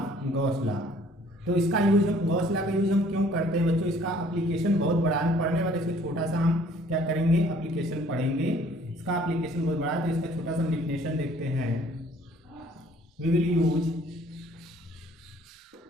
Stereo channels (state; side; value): normal; both; correlation 0.57